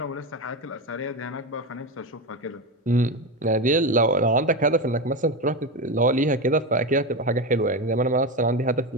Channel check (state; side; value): normal; both; correlation 0.17